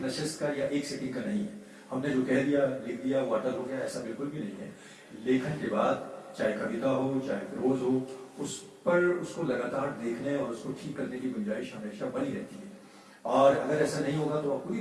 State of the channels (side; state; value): both; identical; correlation 1.00